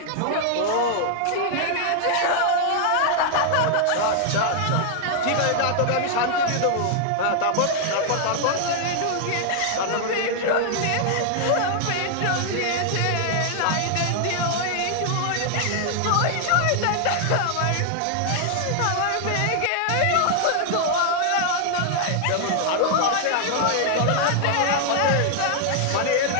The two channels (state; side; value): different; both; correlation 0.00